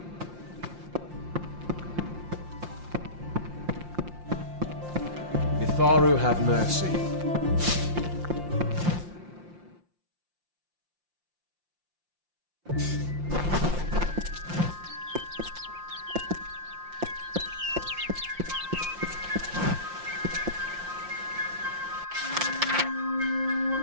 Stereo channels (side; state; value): left; late; 5.7 ms